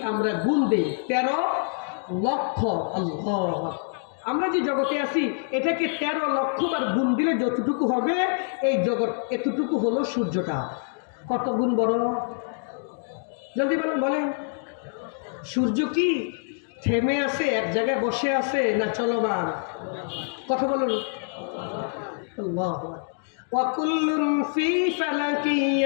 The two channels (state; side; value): silent; right; 61 dB below the other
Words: আমরা গুণ দিই, 13 লক্ষ, আল্লাহ, আমরা যে জগতে আছি এটাকে 13 লক্ষ বার গুণ দিলে যতটুকু হবে, এই জগৎ এতটুকু হলো সূর্যটা। কত গুণ বড়? জলদি বলেন, বলেন। সূর্য কি থেমে আছে, এক জায়গায় বসে আছে, না চলমান? কথা বলুন। আল্লাহু আকবার। ওয়া কুল্লুন ফি ফালাকি